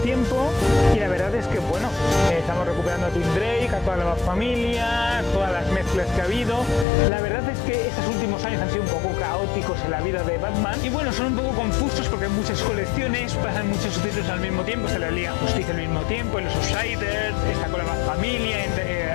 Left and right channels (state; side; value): drops out; right; at 6.9 s